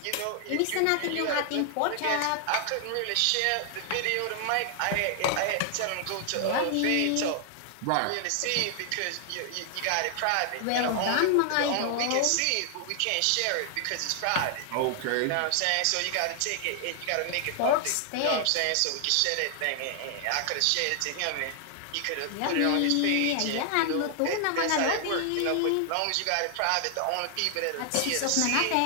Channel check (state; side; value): different; both; correlation 0.00